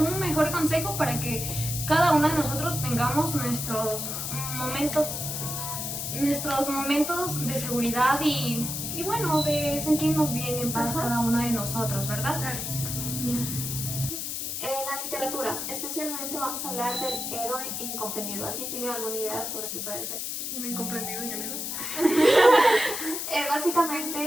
mejor consejo para que cada una de nosotros tengamos nuestros momentos de seguridad y bueno, de sentirnos bien en paz cada una de nosotros, ¿verdad? La literatura, especialmente vamos a hablar del héroe incomprendido. ¿Alguien tiene alguna idea sobre qué puede ser? Incomprendido en el héroe.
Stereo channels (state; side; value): noise; left; hiss, 4 dB below the sound